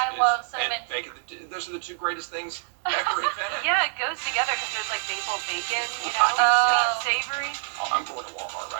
love cinnamon. And bacon. Those are the two greatest things ever invented. Yeah, it goes together because there's like maple bacon, you know, savory. Oh, I'm going to Walmart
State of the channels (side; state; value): left; silent; digital silence